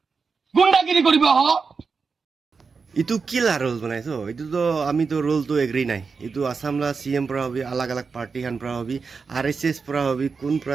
গুন্ডাগিৰি কৰিব হ इतु किला रोल बनाइছো इतु तो आमी तो रोल तो एग्री নাই इतु आसामला सीएम পৰা হবি अलग अलग पार्टी খান পৰা হবি आरएसएस পৰা হবি কোন পৰা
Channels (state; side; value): quieter; left; 5.0 dB